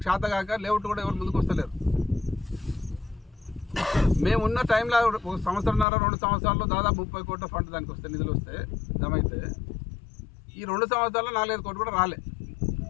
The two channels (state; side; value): drops out; right; at 5.9 s